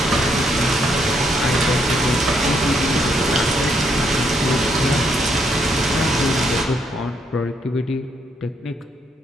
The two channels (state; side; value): normal; both; correlation 0.74